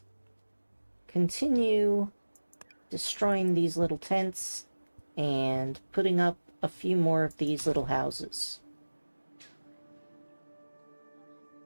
continue destroying these little tents and putting up a few more of these little houses.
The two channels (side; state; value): both; inverted; correlation -1.00